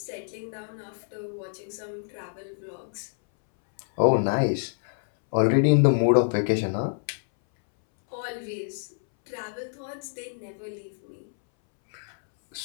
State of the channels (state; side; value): silent; right; 60 dB below the other